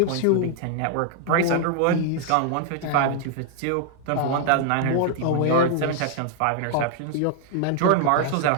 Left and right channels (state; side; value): different; both; correlation 0.00